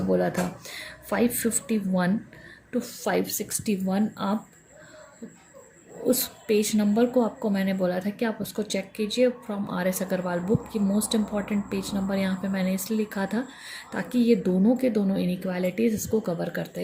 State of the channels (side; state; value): both; identical; correlation 1.00